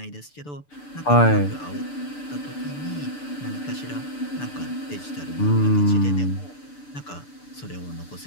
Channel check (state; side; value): late; right; 6.8 ms